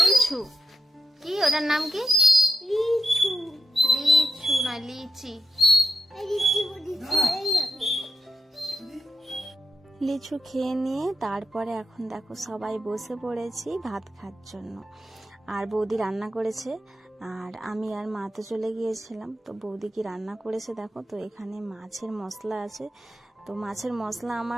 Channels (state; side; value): normal; both; correlation 0.86